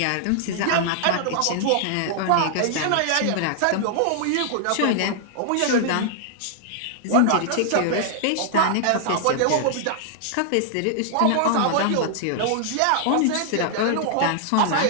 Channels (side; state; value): both; different; correlation -0.01